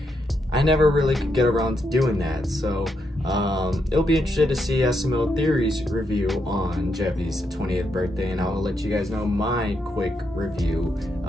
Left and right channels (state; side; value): normal; both; correlation 0.80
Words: I never really could get around to doing that. So it'll be interesting to see SML Theory's review on Jeffy's 20th birthday, and I'll let you guys know my quick review,